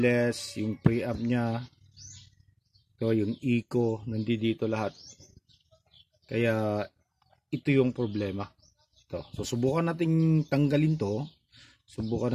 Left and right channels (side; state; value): both; identical; correlation 1.00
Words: yung preamp niya, so yung echo, nandito lahat. Kaya ito yung problema. So subukan nating tanggalin to,